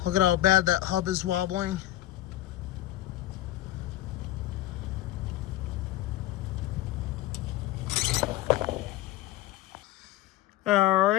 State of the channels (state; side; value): quieter; right; 14.9 dB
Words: Look at how bad that hub is wobbling. All